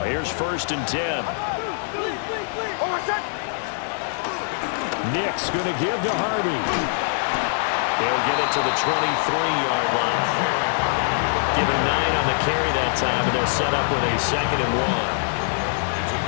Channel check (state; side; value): silent; right; digital silence